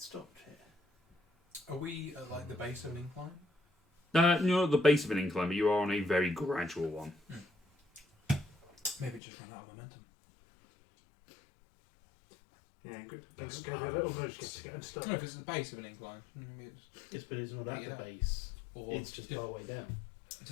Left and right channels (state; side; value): drops out; right; at 9.2 s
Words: stopped here. Are we at like the base of an incline? you're at the base of an incline, but you are on a very gradual one. Maybe it just ran out of momentum. Yeah, good. Let's Give it a little nudge just to get unstuck. No, if it's the base of an incline, maybe it's, Yes, but it's not at Yeah. the base. or It's just our way down.